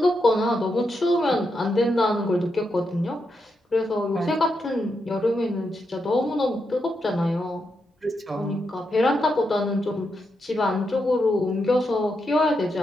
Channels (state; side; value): normal; both; correlation 0.84